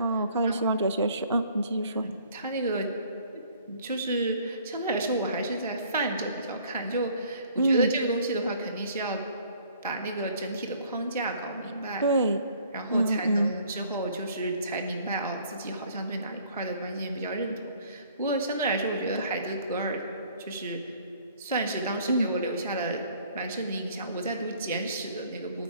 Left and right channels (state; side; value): inverted; both; correlation -0.57